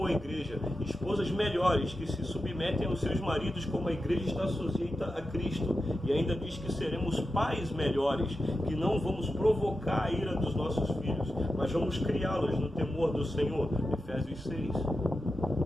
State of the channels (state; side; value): normal; both; correlation 0.90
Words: a igreja, esposas melhores, que se submetem aos seus maridos como a igreja está sujeita a Cristo, e ainda diz que seremos pais melhores, que não vamos provocar a ira dos nossos filhos, mas vamos criá-los no temor do Senhor, Efésios 6.